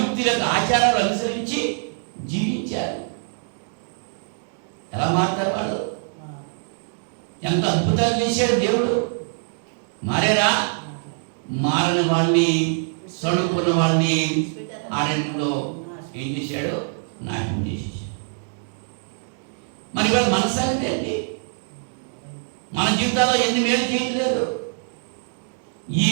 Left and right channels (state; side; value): silent; left; digital silence